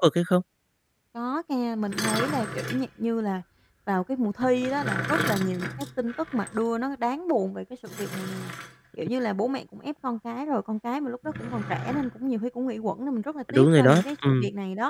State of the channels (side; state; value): both; identical; correlation 1.00